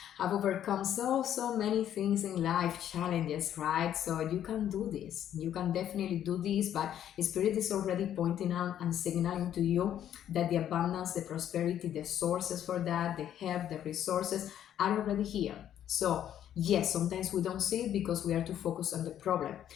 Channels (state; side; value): quieter; right; 10.6 dB